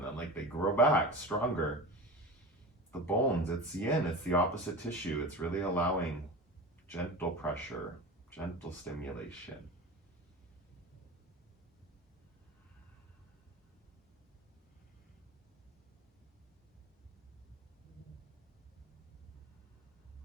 then like they grow back stronger. The bones, it's yin, it's the opposite tissue. It's really allowing gentle pressure, gentle stimulation.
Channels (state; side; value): normal; both; correlation 0.30